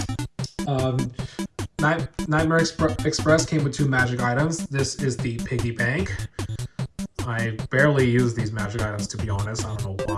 Nightmare Express came with 2 magic items. This is the Piggy Bank. I barely use these magic items, to be honest. I don't know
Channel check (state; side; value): identical; both; correlation 1.00